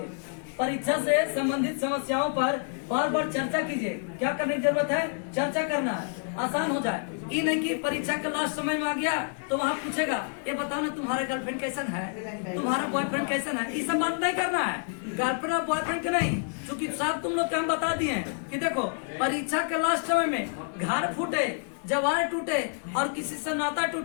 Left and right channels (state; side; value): silent; right; 59 dB below the other